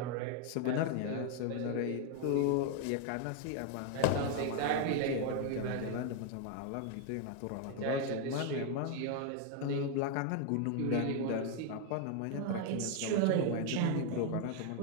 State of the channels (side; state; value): both; different; correlation 0.00